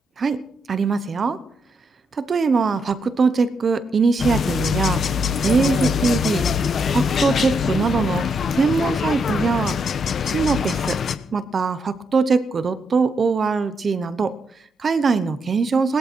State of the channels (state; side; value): normal; both; correlation 0.79